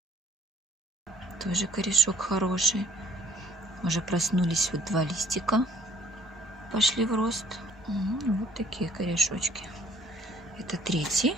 Тоже корешок хороший. Уже проснулись вот 2 листика. Пошли в рост. Вот такие корешочки. Это 3-й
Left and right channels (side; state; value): both; normal; correlation 0.58